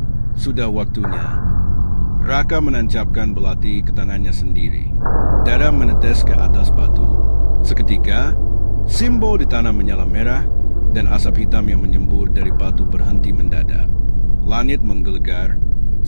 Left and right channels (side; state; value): both; inverted; correlation -1.00